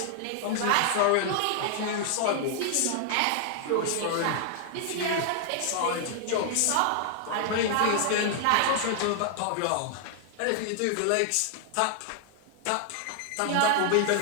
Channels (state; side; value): different; both; correlation 0.00